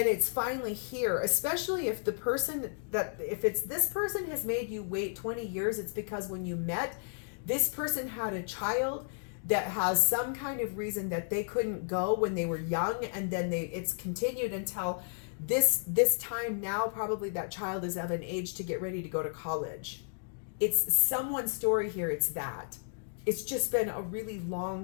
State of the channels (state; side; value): silent; right; digital silence